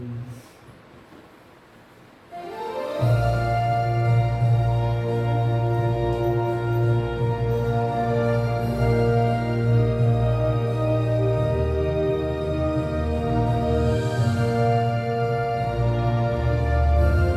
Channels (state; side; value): identical; both; correlation 1.00